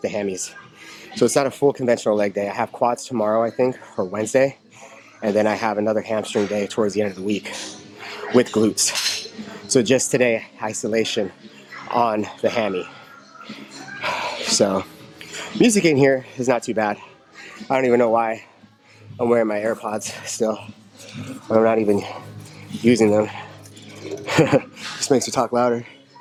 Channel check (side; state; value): both; identical; correlation 1.00